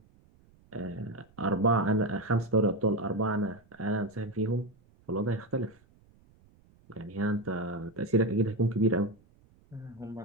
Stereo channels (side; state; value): right; noise; rumble, 30 dB below the sound